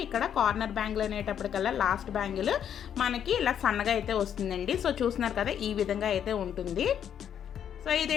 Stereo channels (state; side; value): quieter; right; 9.1 dB